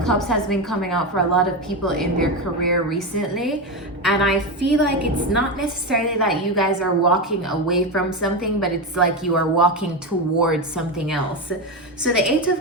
Cups has been coming out for a lot of people in their career recently. And I feel like it's not necessarily that you guys are walking away from something, but it's like you are walking towards something else. So the Eight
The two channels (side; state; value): both; normal; correlation 0.15